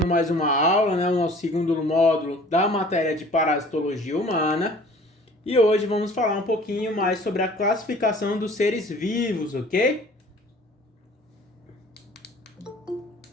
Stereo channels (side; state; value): both; normal; correlation 0.49